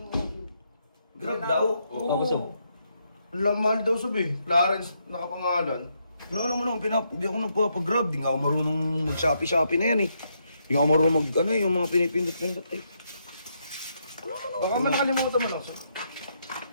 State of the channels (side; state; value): both; inverted; correlation -0.78